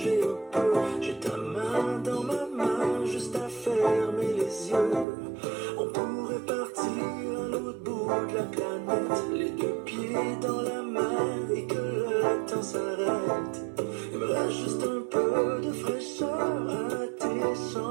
un peu. J'ai ta main dans ma main, juste à fermer les yeux. On pourrait partir à l'autre bout de la planète, les deux pieds dans la mer et que le temps s'arrête. Il me reste juste un peu de fraîcheur à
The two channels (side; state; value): left; drops out; at 5.1 s